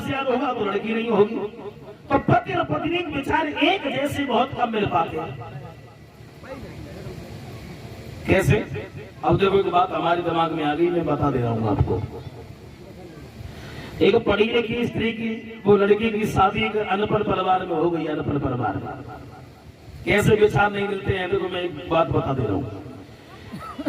विचार होगा तो लड़की नहीं होगी। तो पति और पत्नी के विचार एक जैसे बहुत कम मिल पाते हैं। कैसे? अब देखो एक बात हमारे दिमाग में आ गई, मैं बता दे रहा हूं आपको। एक पढ़ी लिखी स्त्री की, वो लड़की की शादी एक अनपढ़ परिवार में हो गई। अनपढ़ परिवार में कैसे विचार नहीं मिलते हैं? देखो मैं एक बात बता दे रहा हूँ।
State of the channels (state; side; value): identical; both; correlation 1.00